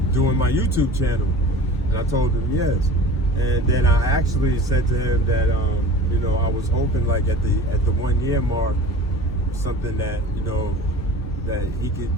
doing my YouTube channel, and I told him yes. And then I actually said to him that you know, I was hoping like at the 1 year mark, something that, you know, that he could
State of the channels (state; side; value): normal; both; correlation 0.40